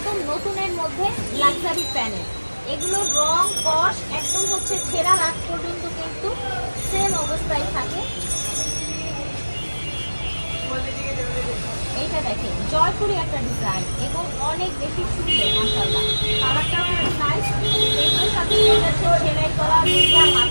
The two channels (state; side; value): inverted; both; correlation -1.00